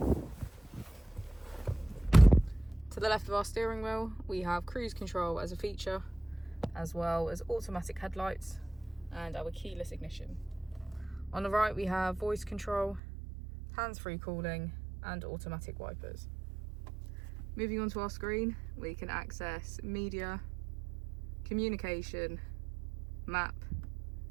To the left of our steering wheel, we have cruise control as a feature, as well as automatic headlights and our keyless ignition. On the right, we have voice control, hands-free calling and automatic wipers. Moving on to our screen, we can access media, communication, map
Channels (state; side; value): drops out; left; at 13.0 s